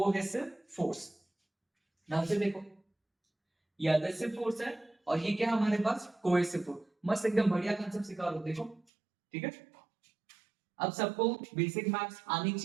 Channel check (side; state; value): left; drops out; at 8.8 s